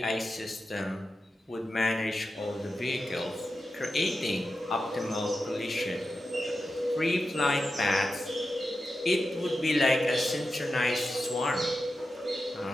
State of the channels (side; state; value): both; normal; correlation 0.90